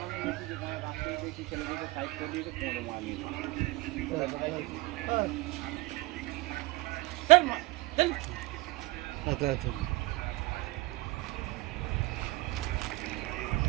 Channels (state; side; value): quieter; left; 21.5 dB